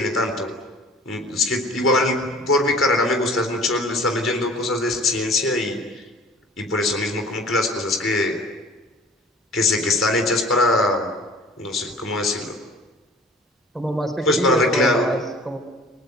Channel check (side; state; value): both; normal; correlation 0.47